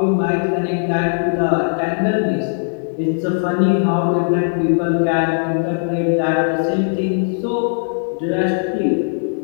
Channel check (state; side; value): silent; right; digital silence